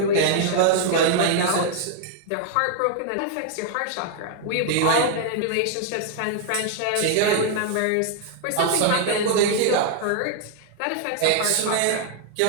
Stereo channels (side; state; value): both; different; correlation 0.00